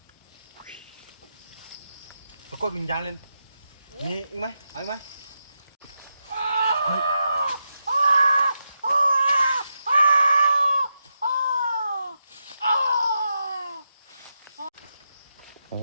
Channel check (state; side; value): inverted; both; correlation -0.87